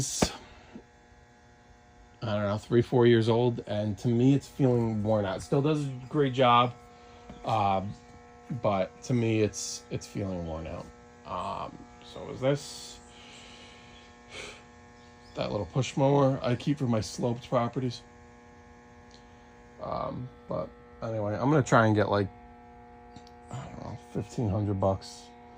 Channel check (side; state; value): both; identical; correlation 1.00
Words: I don't know, 3-4 years old, and to me it's feeling worn out. It still does a great job. But to me, it's feeling worn out. So is this that little push mower I keep for my sloped properties? But anyway, I'm gonna try and get like, I don't know, $1,500